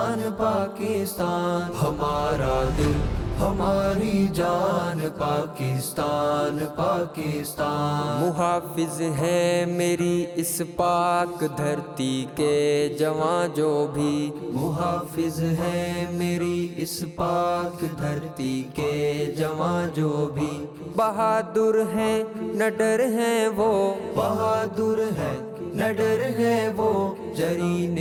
پاکستان، ہمارا دل، ہماری جان پاکستان، پاکستان، محافظ ہے میری اس پاک دھرتی کے جواں جو بھی، محافظ ہے میری اس پاک دھرتی کے جواں جو بھی، بہادر ہیں نہ ڈر ہیں وہ، بہادر ہے نہ ڈر ہے وہ، جری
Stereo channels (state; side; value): identical; both; correlation 1.00